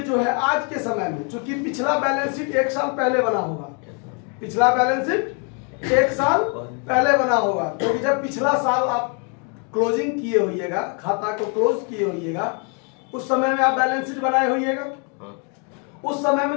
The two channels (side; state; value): right; quieter; 37.9 dB